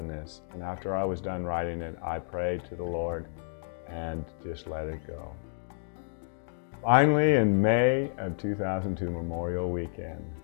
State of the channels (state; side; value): silent; right; digital silence